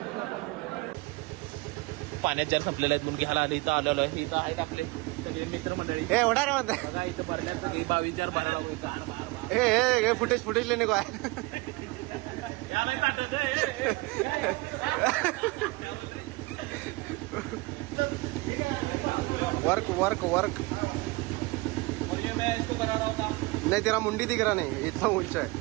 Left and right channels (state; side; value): quieter; left; 23.7 dB